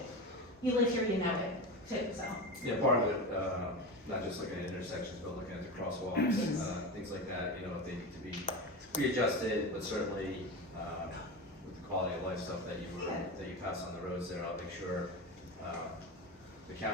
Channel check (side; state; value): both; normal; correlation 0.24